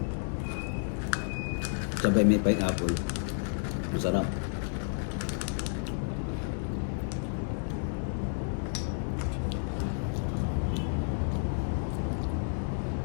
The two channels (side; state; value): right; silent; 57 dB below the other